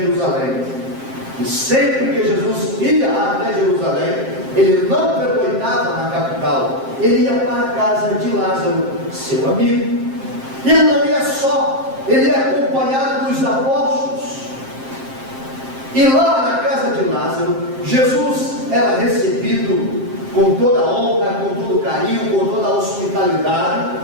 E sempre que Jesus ia até Jerusalém, ele não pernoitava na capital, ele ia para a casa de Lázaro, seu amigo. E ele não ia só, ele ia acompanhado dos apóstolos. E lá na casa de Lázaro, Jesus era recebido com toda a honra, com todo o carinho, com toda a hospitalidade.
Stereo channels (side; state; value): left; late; 7.6 ms